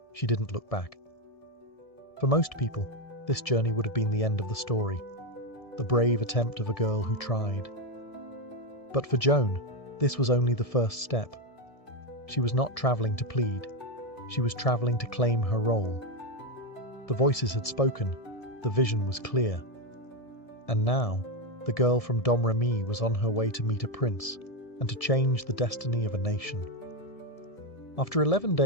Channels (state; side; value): late; right; 1.7 ms